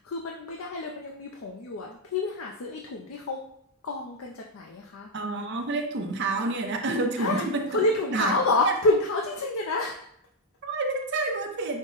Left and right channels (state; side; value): normal; both; correlation 0.01